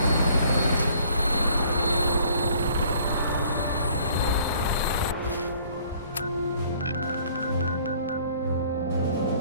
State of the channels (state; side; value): inverted; both; correlation -0.57